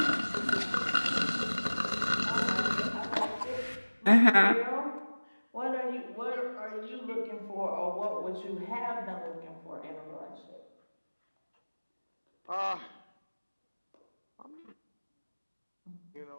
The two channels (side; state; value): both; inverted; correlation -1.00